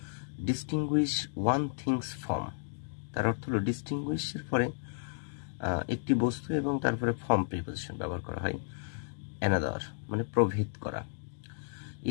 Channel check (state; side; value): silent; right; digital silence